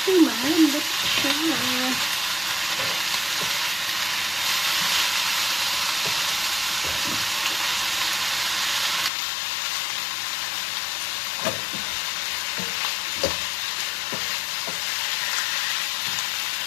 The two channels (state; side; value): drops out; right; at 9.1 s